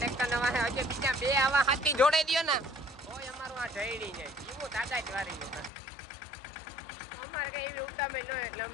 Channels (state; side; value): drops out; right; at 5.7 s